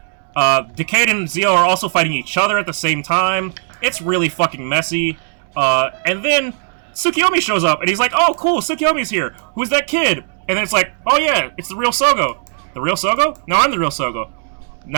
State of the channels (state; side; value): silent; left; digital silence